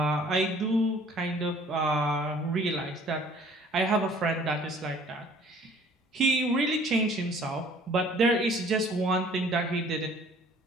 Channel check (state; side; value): normal; both; correlation 0.54